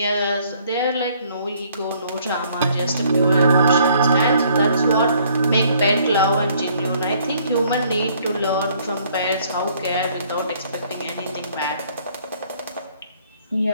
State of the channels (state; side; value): inverted; both; correlation -0.62